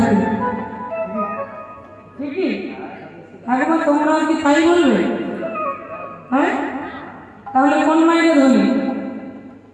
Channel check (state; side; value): identical; both; correlation 1.00